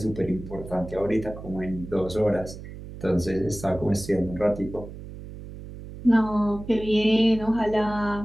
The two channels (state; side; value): noise; right; hum, 13 dB below the sound